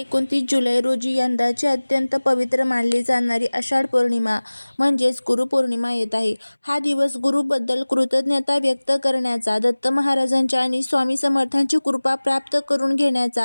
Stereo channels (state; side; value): inverted; both; correlation -1.00